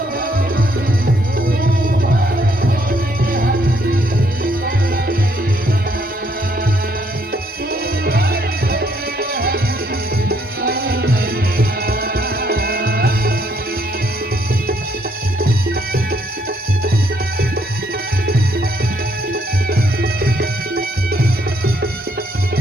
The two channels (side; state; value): both; normal; correlation 0.70